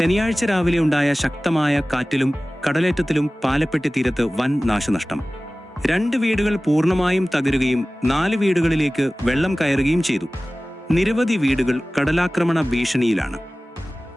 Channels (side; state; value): both; normal; correlation 0.97